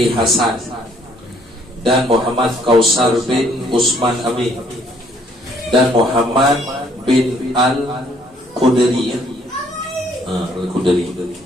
Hasan dan Muhammad Kausar bin Usman Amin dan Muhammad bin Al-Qudri.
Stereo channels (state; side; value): normal; both; correlation 0.64